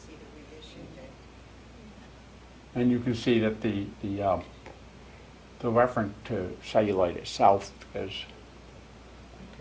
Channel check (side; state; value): both; identical; correlation 1.00